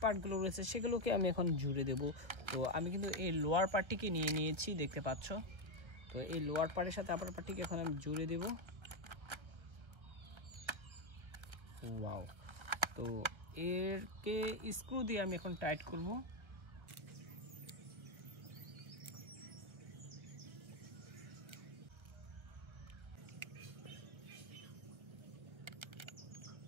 পার্টগুলো রয়েছে সেগুলোকে আমি এখন জুড়ে দেব। তো আমি কিন্তু এই লোয়ার পার্টটিকে নিয়ে নিয়েছি, দেখতে পাচ্ছ। তো এই লোয়ার পার্টের সাথে আপার পার্টটিকে এখন আমি জুড়ে দেব। ওয়াও, তো এরকে স্ক্রু দিয়ে আমি এখন টাইট করব।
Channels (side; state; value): left; late; 1.3 ms